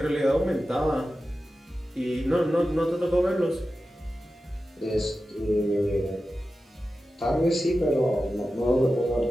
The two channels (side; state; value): both; normal; correlation 0.93